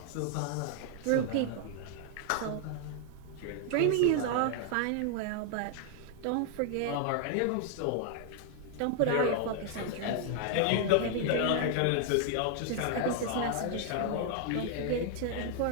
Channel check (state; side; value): different; both; correlation 0.00